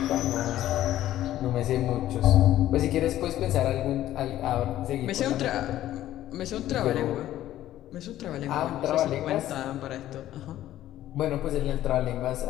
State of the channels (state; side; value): quieter; right; 13.3 dB